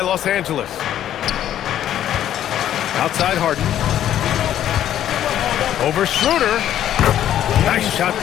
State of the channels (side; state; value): right; quieter; 11.3 dB